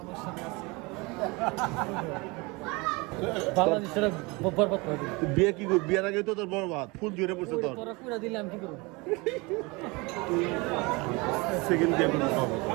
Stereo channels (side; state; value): left; quieter; 26.0 dB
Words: বাংলাদেশের বরবাদ করে দিল বিয়ে কি করবি বিয়ের আগে তো তোর বরবাদ ফুল জুড়ে পড়ছে তোর তোরা পুরা দিলাম কি করব সেকেন্ড বিয়ে করতে হবে